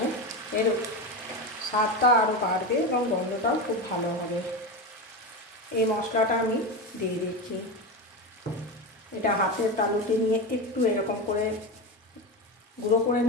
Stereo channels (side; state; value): both; normal; correlation 0.19